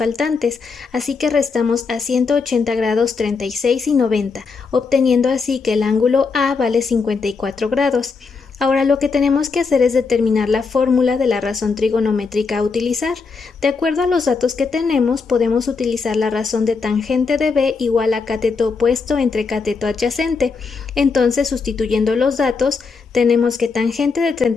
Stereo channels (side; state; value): right; quieter; 4.8 dB